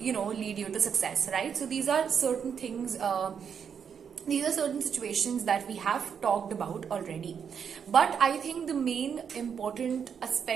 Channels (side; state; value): left; quieter; 7.3 dB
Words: you to success, right? So these are certain things, these are certain situations that we have talked about already, but I think the main important